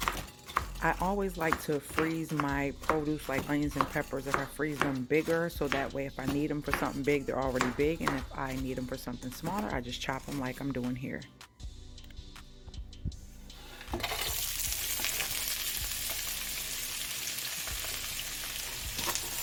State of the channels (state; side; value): identical; both; correlation 1.00